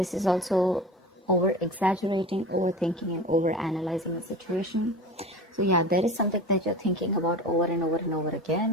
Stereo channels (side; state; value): both; normal; correlation 0.33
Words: is also over-exaggerating, overthinking, and over-analyzing the situation. So yeah, there is something that you're thinking about over and over and over